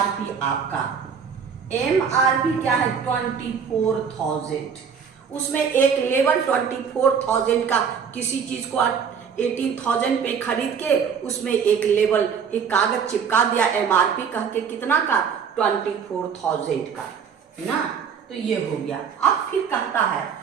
आपका एमआरपी क्या है 24,000। उसमें एक लेवल 24,000 का किसी चीज को 18,000 पे खरीद के उसमें एक लेवल एक कागज चिपका दिया एमआरपी कह के, कितना का 24,000 का ना। तो ये हो गया। अब फिर कहता है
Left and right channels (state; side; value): quieter; left; 6.8 dB